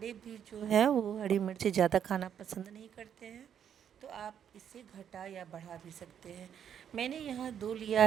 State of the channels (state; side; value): quieter; left; 8.8 dB